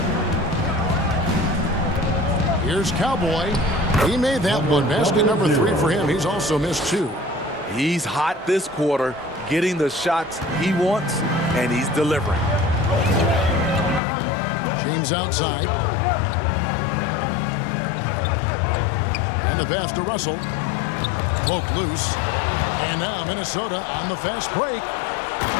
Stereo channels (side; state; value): right; drops out; at 14.0 s